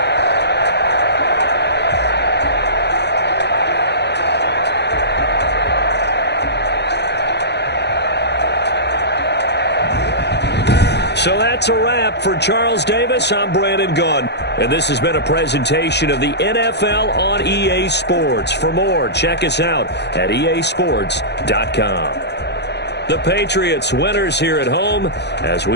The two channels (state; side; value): late; right; 0.50 ms